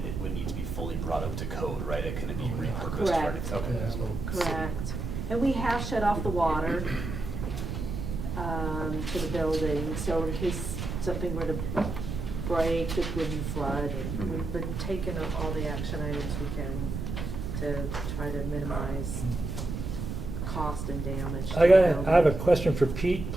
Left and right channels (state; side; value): noise; right; rumble, 5 dB below the sound